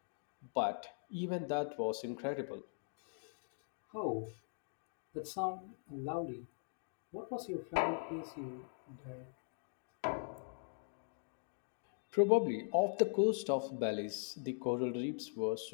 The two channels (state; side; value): silent; right; digital silence